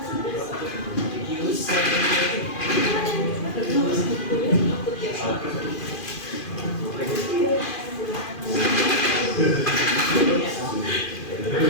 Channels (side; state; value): right; late; 2.5 ms